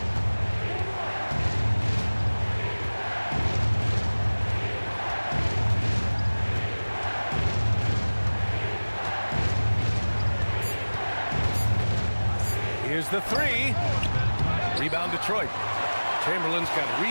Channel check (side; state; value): both; inverted; correlation -1.00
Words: Here's the 3. Rebound Detroit. Chamberlain's got